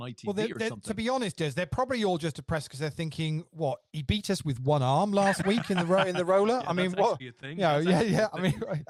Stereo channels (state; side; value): identical; both; correlation 1.00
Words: or something. To be honest, Des, they're probably all just depressed because they're thinking, "What? He beat us with one arm last week in the roller." Yeah, I mean, that's what? actually a thing. Yeah, That's yeah, actually a yeah. I